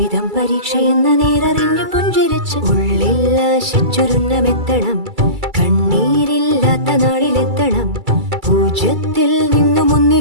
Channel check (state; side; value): late; left; 2.3 ms